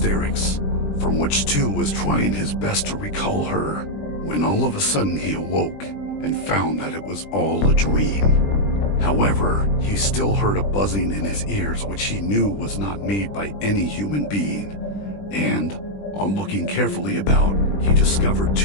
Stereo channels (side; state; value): right; late; 20 ms